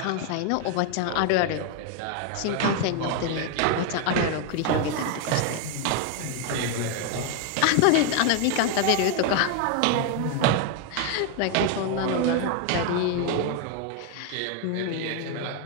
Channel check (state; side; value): different; both; correlation 0.01